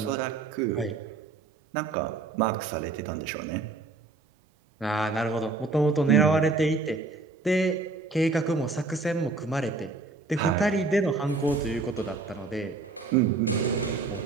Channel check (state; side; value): quieter; left; 3.7 dB